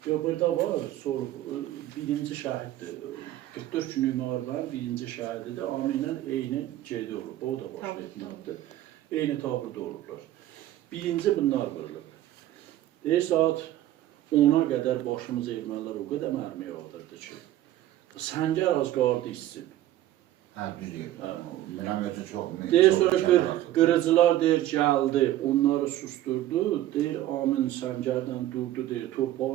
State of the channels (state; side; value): quieter; left; 13.9 dB